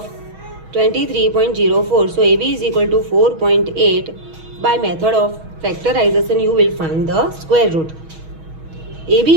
23.04. So AB is equal to 4.8. By method of factorization you will find the square root.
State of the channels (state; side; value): late; left; 6.3 ms